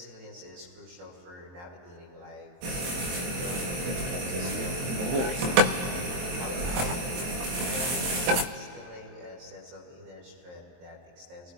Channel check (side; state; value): left; late; 23 ms